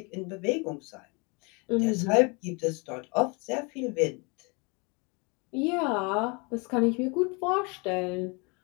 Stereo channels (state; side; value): quieter; right; 30.3 dB